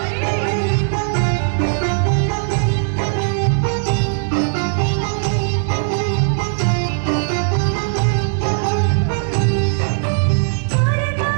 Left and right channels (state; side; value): silent; left; digital silence